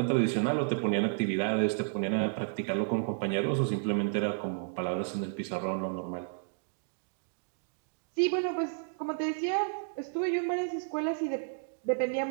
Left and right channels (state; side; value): silent; left; digital silence